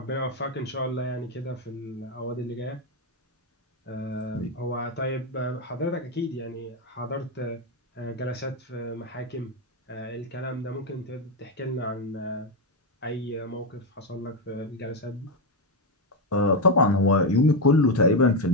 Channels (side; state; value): both; normal; correlation 0.07